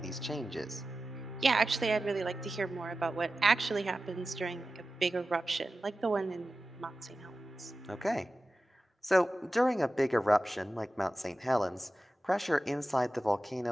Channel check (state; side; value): normal; both; correlation 0.94